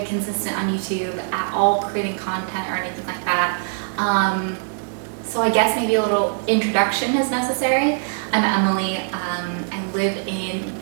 consistent on YouTube at all, creating content or anything like that. So I guess maybe a little introduction is necessary. I'm Emily. I live in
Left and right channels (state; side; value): silent; left; digital silence